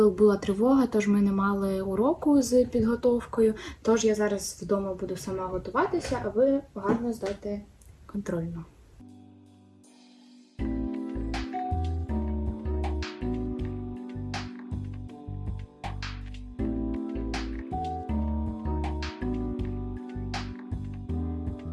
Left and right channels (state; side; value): identical; both; correlation 1.00